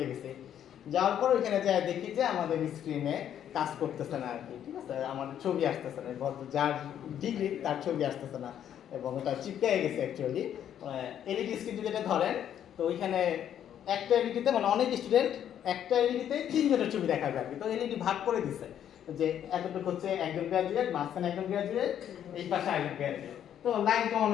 গেছে। যাওয়ার পর ওইখানে যাই দেখি যে আমাদের স্ক্রিনে কাজ করতেছে না আর কি, ঠিক আছে, আমাদের ছবি আসতেছে না, যার ডিগ্রি তার ছবি আসতেছে না, এবং ওটা চিপকাই গেছে অ্যাকচুয়ালি। এলইডি স্ক্রিন যেটা ধরেন, তো ওইখানে একটা এলইডিতে মানে অনেক স্টুডেন্ট একটা এলইডিতে 3 জনের ছবি দেখা যায়। তো এলইডি ভাগ করে দিছে, যে এতটুকু হচ্ছে একজন গ্র্যাজুয়েট, মাঝখানে একজন গ্র্যাজুয়েট, এই পাশে আরেকজন গ্র্যাজুয়েট। তো লাইন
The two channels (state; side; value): quieter; right; 10.0 dB